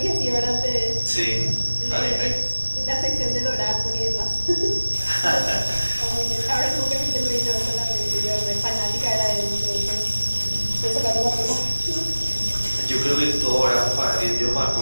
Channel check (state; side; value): inverted; both; correlation -1.00